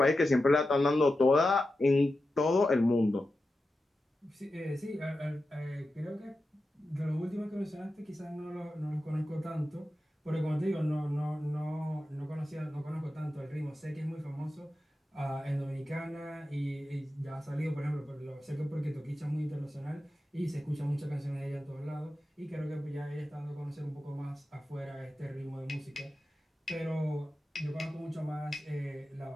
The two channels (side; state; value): both; normal; correlation 0.91